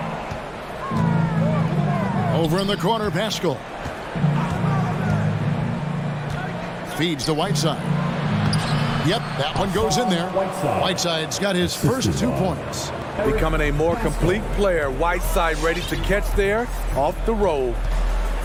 Over in the corner, Pascal. Feeds to Whiteside. Yep, that one goes in there. Whiteside's got his first 2 points. Becoming a more complete player. Whiteside ready to catch there off the roll.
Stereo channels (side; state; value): both; identical; correlation 1.00